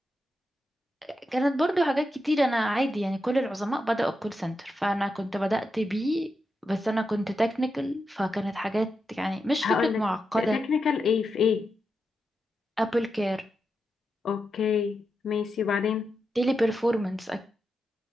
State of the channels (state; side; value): normal; both; correlation 0.87